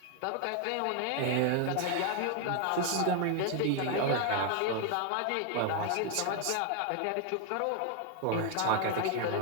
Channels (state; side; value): different; both; correlation 0.01